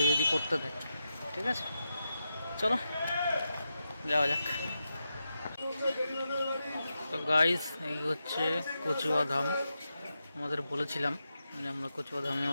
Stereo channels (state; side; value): inverted; both; correlation -0.88